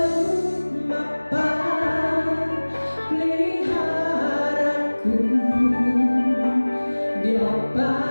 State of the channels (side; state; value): both; inverted; correlation -1.00